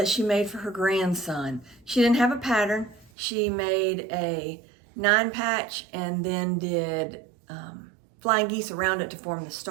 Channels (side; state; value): left; drops out; at 3.1 s